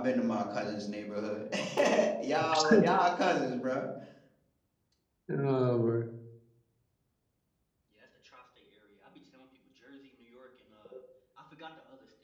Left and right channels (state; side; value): identical; both; correlation 1.00